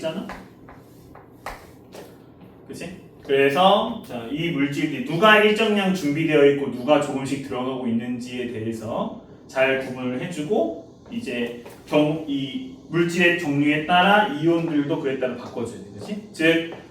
그치? 그래서 자, 이 물질이 누가 일정량 준비되어 있고 누가 조금씩 들어가고 있는지에 대해서 잘 구분을 해주고, 이제 이 물질의 종류에 따라 이온들도 그에 따라 바꿔줘야 돼. 그치? 즉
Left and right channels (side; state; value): both; identical; correlation 1.00